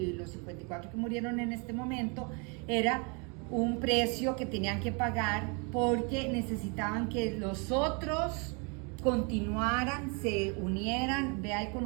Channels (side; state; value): left; quieter; 33.9 dB